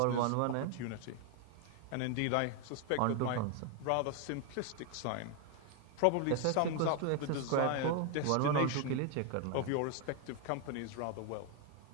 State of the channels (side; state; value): both; different; correlation 0.01